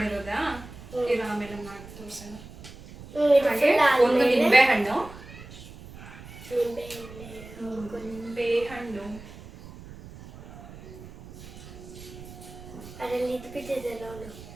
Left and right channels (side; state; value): right; noise; rumble, 16 dB below the sound